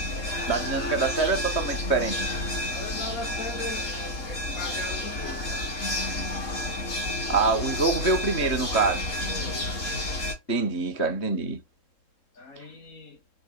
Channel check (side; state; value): right; late; 3.7 ms